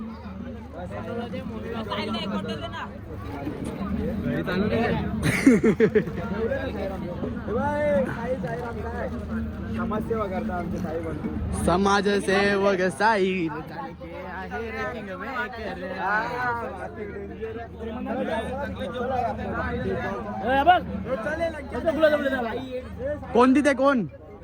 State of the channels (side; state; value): both; identical; correlation 1.00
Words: समाजसेवा करता आमचे साई बनतो समाजसेवक साई कोण तिथे